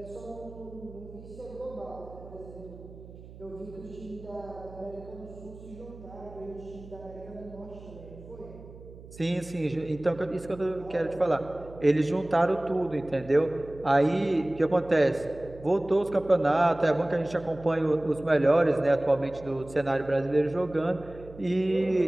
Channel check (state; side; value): noise; right; hum, 17 dB below the sound